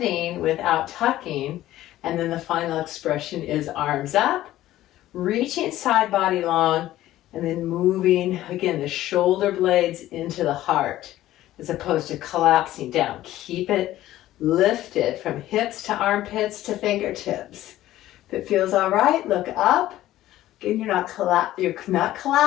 without tucking. And then the final expression is arms up, reaching side body long, and then moving, again, the shoulder blades into the heart as opposed to collapsing down. Keep it lifted from hips to armpits to fingertips. If it feels all right, look up. Again, you're not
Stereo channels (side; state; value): right; quieter; 14.5 dB